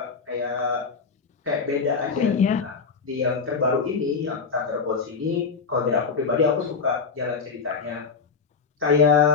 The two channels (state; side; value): quieter; right; 5.2 dB